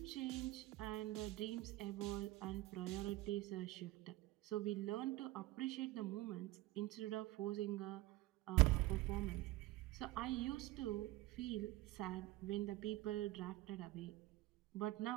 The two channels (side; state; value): left; quieter; 17.8 dB